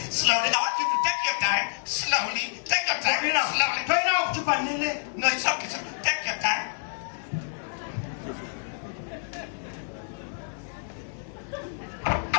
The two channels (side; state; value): right; silent; digital silence